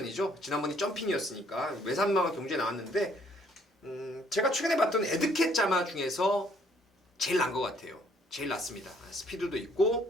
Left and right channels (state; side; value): normal; both; correlation 0.64